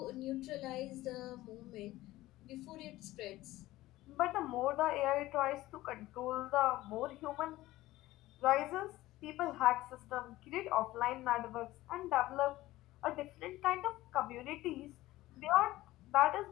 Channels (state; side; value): quieter; right; 16.9 dB